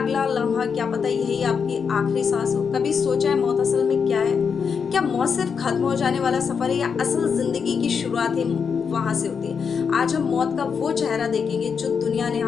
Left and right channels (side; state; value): right; quieter; 6.2 dB